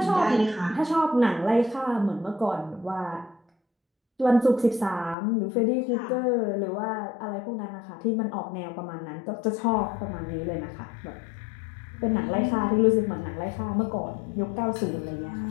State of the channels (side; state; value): right; drops out; at 5.2 s